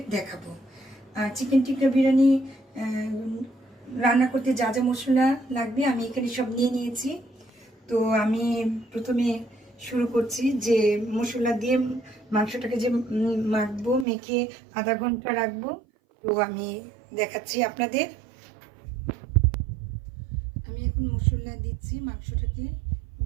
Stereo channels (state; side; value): drops out; left; at 14.1 s